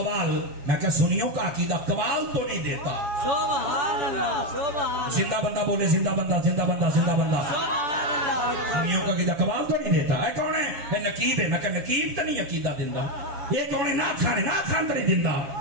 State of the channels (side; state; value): left; late; 7.2 ms